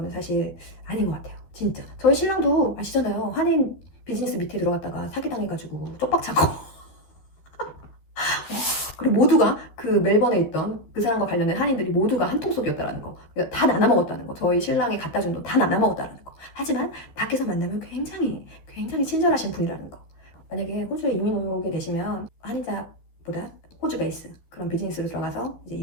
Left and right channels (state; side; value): late; right; 13 ms